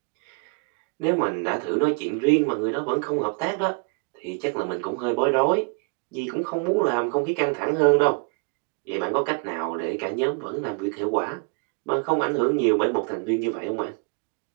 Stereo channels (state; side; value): quieter; left; 36.1 dB